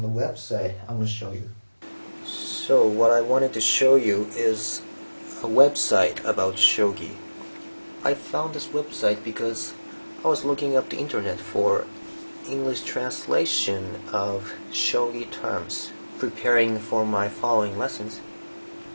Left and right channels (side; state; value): both; inverted; correlation -1.00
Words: the website I'm going to show you. So what I wanted to show you is a website about shogi. I found this website because I was looking up the internet for English translation of shogi terms, preparing for my following lessons.